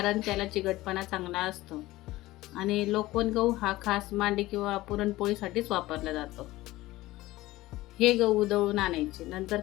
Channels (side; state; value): right; quieter; 17.8 dB